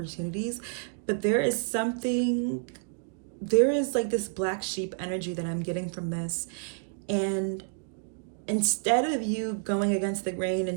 but there is like this black sheep energy that I'm getting from this. And instead of you going against the grain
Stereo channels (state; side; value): silent; left; digital silence